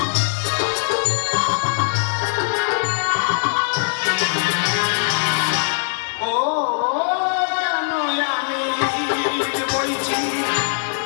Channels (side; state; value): right; silent; 65 dB below the other